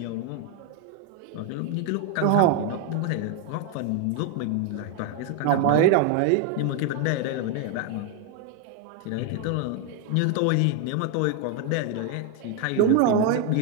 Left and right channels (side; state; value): both; different; correlation 0.01